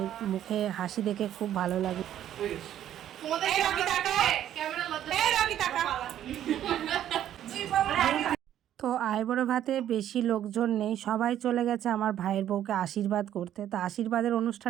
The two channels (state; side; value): quieter; left; 11.3 dB